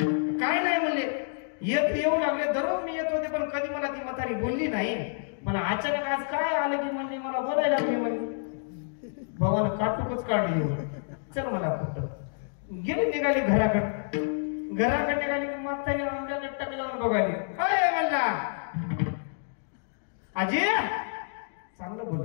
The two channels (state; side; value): silent; right; digital silence